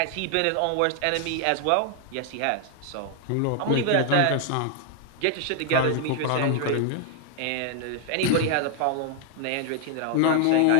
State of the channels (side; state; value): both; different; correlation 0.00